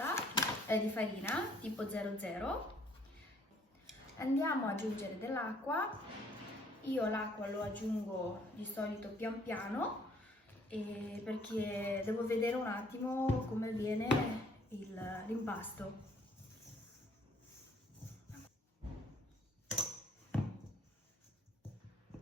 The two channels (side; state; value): both; normal; correlation 0.61